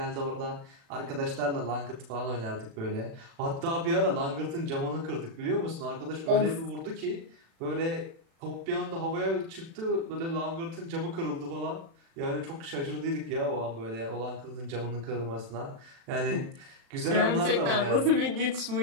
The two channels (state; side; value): late; left; 36 ms